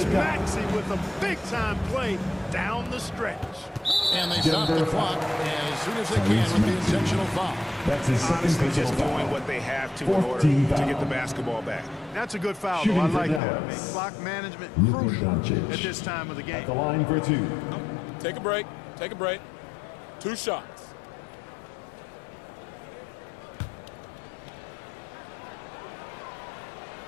Maxey with a big-time play down the stretch. And they stop the clock as soon as they can with the intentional foul. That's his second Honestly, personal just foul. doing what they have to in order 14 to foul. get the basketball back. That's a good foul, Shooting though. I for like that. I mean, Dallas. clock management Luka crucial Doncic. at this time of the At the game. line for 2. Take a break. Take a break. 2 shots.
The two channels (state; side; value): drops out; right; at 13.4 s